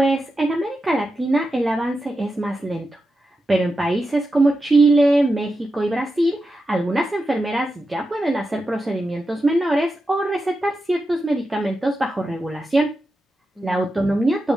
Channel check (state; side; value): normal; both; correlation 0.89